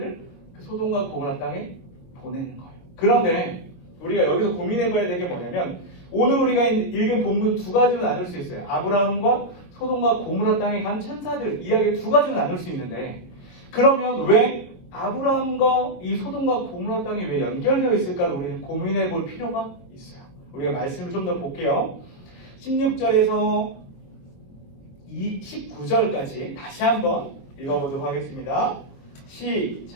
그 소돔과 고모라 땅에 보내는 거예요. 그런데 우리가 여기서 고민해봐야 될 게 뭐냐면 오늘 우리가 읽은 본문 두 가지로 나눌 수 있어요. 아브라함과 소돔과 고모라 땅에 간 천사들 이야기 두 가지로 나눌 수 있는데 그러면 왜 아브라함과 이 소돔과 고모라 땅이 왜 연결되어 있을까를 우리는 고민해 볼 필요가 있어요. 우리가 말씀을 좀 더 볼게요. 16절에서 19절까지 다시 한번 읽어보도록 하겠습니다.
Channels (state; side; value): late; right; 23 ms